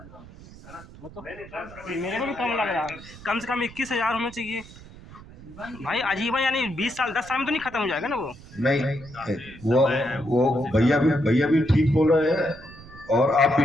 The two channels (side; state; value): right; noise; rumble, 18 dB below the sound